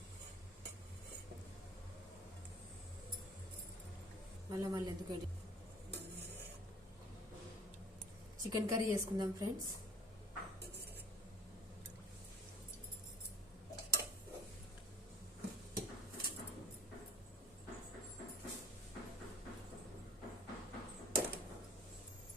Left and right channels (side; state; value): both; normal; correlation 0.49